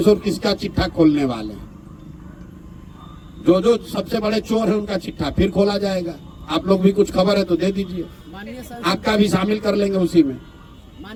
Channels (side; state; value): both; identical; correlation 1.00